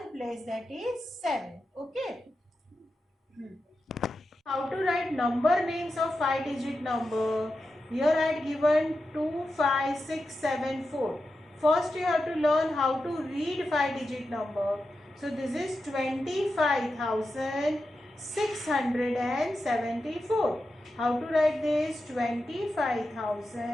place, that is 7. Okay. How to write number names of 5-digit number? Here I had given 2, 5, 6, 7, 4. First you have to learn how to read 5-digit number. So this is 25,674. How to write this?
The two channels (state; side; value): normal; both; correlation 0.90